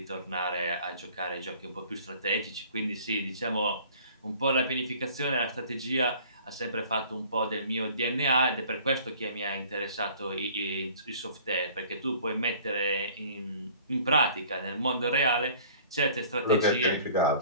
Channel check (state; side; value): inverted; both; correlation -0.50